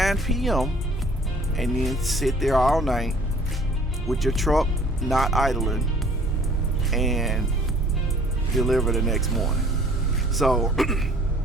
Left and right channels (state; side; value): normal; both; correlation 0.54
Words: p.m. and then sit there all night with your truck not idling and deliver the next morning. So